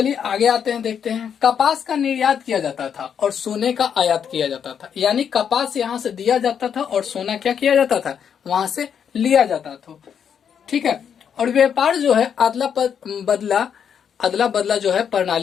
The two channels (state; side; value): quieter; right; 7.9 dB